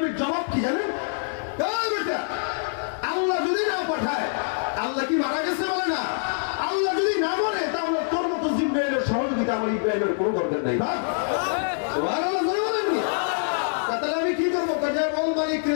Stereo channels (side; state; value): right; silent; digital silence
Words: জবাব কি জানেন? আল্লাহ যদি না পাঠায়, আল্লাহ কি মারা গেছে বলে না? আল্লাহ যদি না বলে, তাহলে তোর মতো জিবরাইলের সহযোগিতা আমার ইব্রাহিমের কোনো দরকার নাই। তাহলে আমি কি করবো? মালিক